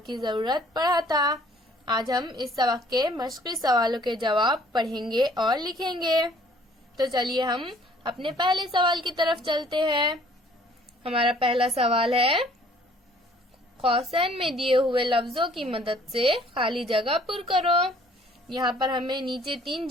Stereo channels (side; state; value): both; normal; correlation 0.57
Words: जरूरत पढ़ा था। आज हम इस सबक के मश्क़ी सवालों के जवाब पढ़ेंगे और लिखेंगे। तो चलिए हम अपने पहले सवाल की तरफ चलते हैं। हमारा पहला सवाल है, कौसैन में दिए हुए लफ्जों की मदद से खाली जगह पुर करो। यहाँ पर हमें नीचे 3